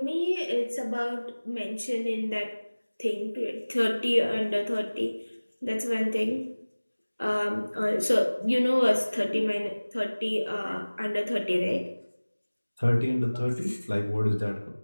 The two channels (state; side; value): inverted; both; correlation -1.00